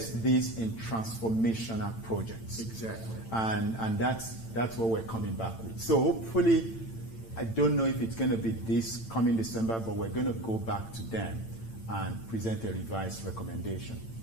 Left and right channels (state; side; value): late; right; 8.9 ms